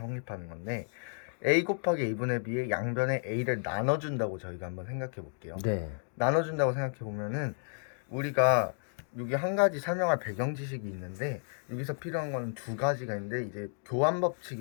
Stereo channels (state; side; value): silent; right; 56 dB below the other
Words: 건데 A 곱하기 A분의 B의 양변에 A를 나눠준다고 저희가 한번 생각해 볼게요. 네. 나눠준다고 생각해 보면은 우리가 여기 한 가지 설명할 배경 지식이 있는데 여기서 필요한 건 두 가지가 있는데 이제 교환